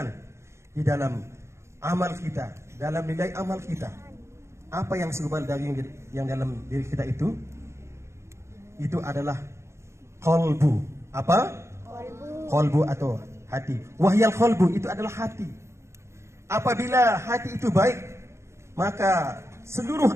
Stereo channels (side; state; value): left; late; 0.13 ms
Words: di dalam amal kita, dalam nilai amal kita. Apa yang segumpal daging yang dalam diri kita itu adalah qalbu. Apa? Qalbu atau hati. Wahyal qalbu itu adalah hati. Apabila hati itu baik, maka seluruh